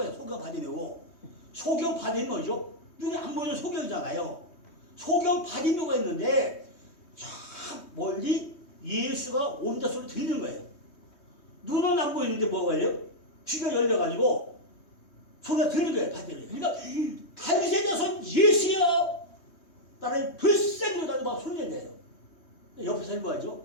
있어요. 소경 바디메오 뭐죠? 눈이 안 보이는 소경이잖아요. 소경 바디메오가 있는데 저 멀리 예수가 온다 소리 들리는 거예요. 눈은 안 보이는데 뭐가 걸려? 귀가 열려가지고 소리가 들리는 거예요. 바디메오. 그러니까 다윗의 자손 예수야! 나를 불쌍히로 달고 막 소리 낸대요. 옆에서 뭐하죠?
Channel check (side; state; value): right; late; 3.2 ms